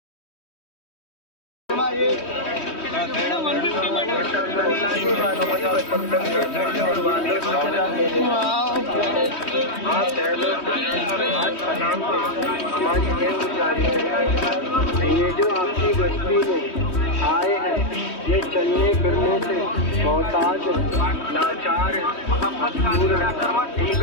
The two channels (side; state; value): right; late; 3.1 ms